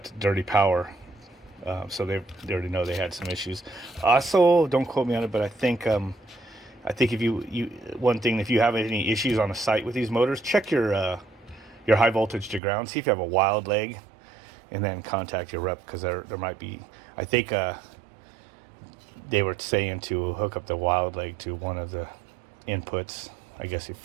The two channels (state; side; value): drops out; left; at 12.6 s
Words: dirty power. So they already know they had some issues. Also, don't quote me on it, but I think if if you have any issues on the site with these motors, check your high voltage to ground. See if you have a wild leg, and then contact your rep, because there might be. I think they were saying to hook up the wild leg to one of the inputs. I guess he